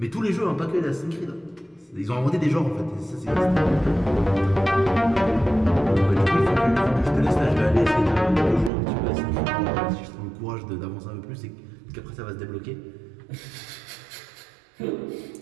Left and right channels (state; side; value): drops out; left; at 8.7 s